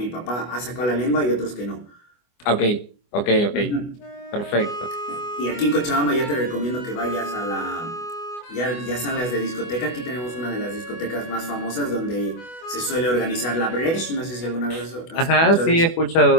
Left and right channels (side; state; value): right; late; 24 ms